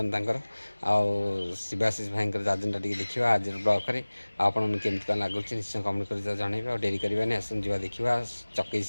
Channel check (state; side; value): inverted; both; correlation -1.00